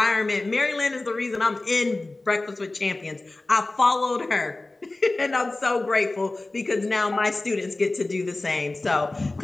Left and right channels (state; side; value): quieter; right; 3.0 dB